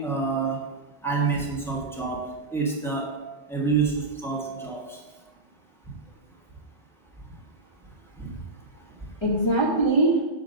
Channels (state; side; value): quieter; left; 3.0 dB